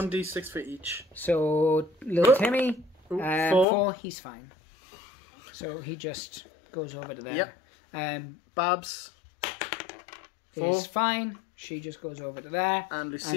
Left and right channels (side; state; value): right; drops out; at 3.7 s